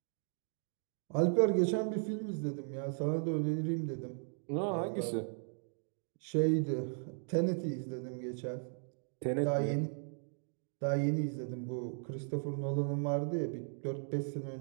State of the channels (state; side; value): silent; left; 53 dB below the other